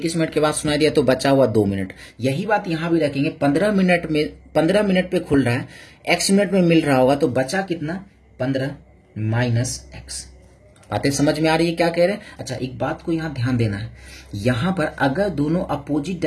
मिनट के बाद सुनाई दिया तो बचा हुआ 2 मिनट। यही बात यहाँ भी रखेंगे। 15 मिनट पे खुल रहा है, x मिनट में मिल रहा होगा, तो बचा कितना, 15 माइनस x। बातें समझ में आ रही है क्या कह रहे हैं। अच्छा, एक बात को यहाँ ध्यान देना है, यहाँ पर अगर दोनों अपोजिट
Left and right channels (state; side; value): identical; both; correlation 1.00